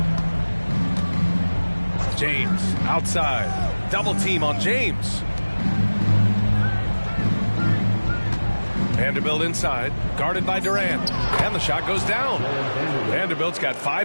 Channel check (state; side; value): inverted; both; correlation -1.00